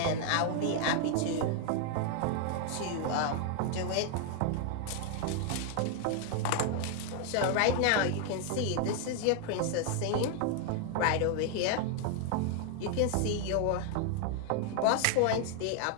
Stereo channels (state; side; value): different; both; correlation 0.00